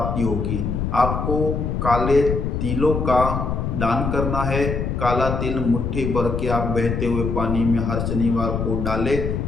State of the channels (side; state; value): left; noise; rumble, 2 dB below the sound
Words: होगी। आपको काले तिलों का दान करना है। काला तिल मुट्ठी भर के आप बहते हुए पानी में हर शनिवार को डालें,